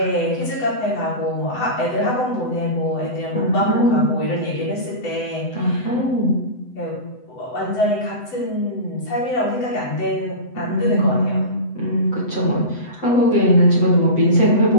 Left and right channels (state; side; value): late; right; 7.9 ms